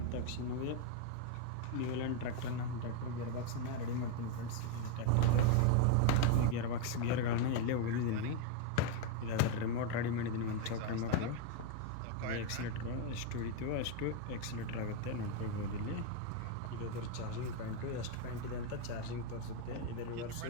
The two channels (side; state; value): both; different; correlation 0.01